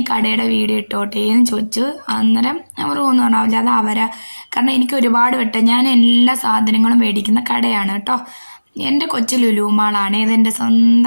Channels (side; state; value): both; inverted; correlation -1.00